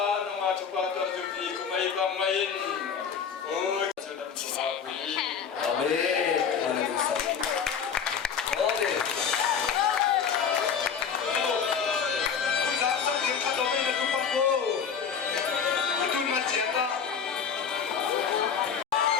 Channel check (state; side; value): quieter; right; 6.9 dB